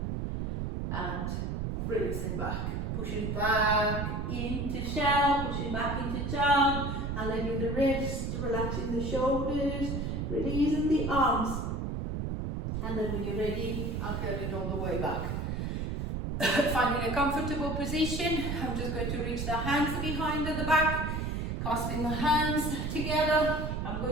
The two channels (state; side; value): noise; right; rumble, 2 dB below the sound